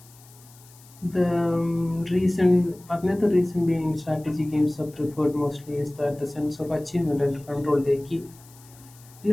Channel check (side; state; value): left; noise; hiss, 24 dB below the sound